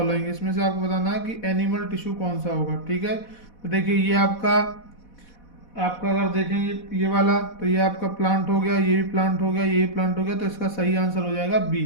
इसमें से आपको बताना है कि एनिमल टिश्यू कौन सा होगा। ठीक है, तो देखिए ये आपका अगर देखें ये वाला, तो ये आपका प्लांट हो गया, ये भी प्लांट हो गया, ये भी प्लांट हो गया, तो इसका सही आंसर हो जाएगा बी।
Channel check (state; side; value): late; right; 4.1 ms